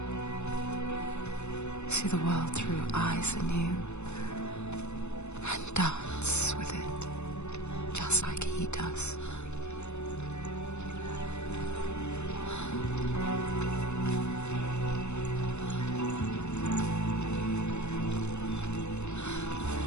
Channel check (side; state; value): right; late; 0.82 ms